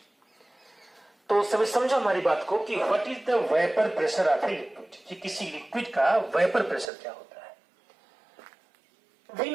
तो सभी समझो हमारी बात को कि what is the vapour pressure of a liquid, कि किसी लिक्विड का वेपर प्रेशर क्या होता है। We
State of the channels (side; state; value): left; drops out; at 6.9 s